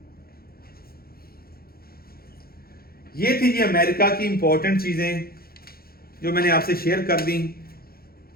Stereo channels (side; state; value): right; late; 0.44 ms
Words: ये थी जी अमेरिका की इंपॉर्टेंट चीजें जो मैंने आपसे शेयर कर दी।